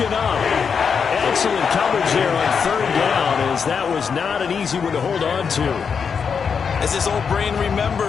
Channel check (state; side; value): quieter; right; 6.3 dB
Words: up. Excellent coverage there on 3rd down, as that was not an easy one to hold on to. As his old brain